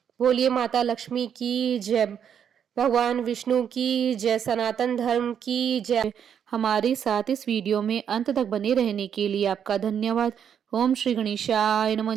बोलिए माता लक्ष्मी की जय। भगवान विष्णु की जय, सनातन धर्म की जय। हमारे साथ इस वीडियो में अंत तक बने रहने के लिए आपका धन्यवाद। ओम श्री गणेशाय नमः।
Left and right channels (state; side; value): quieter; left; 8.3 dB